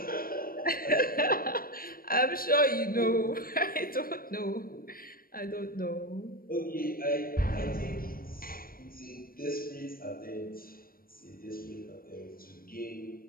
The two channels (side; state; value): right; late; 0.42 ms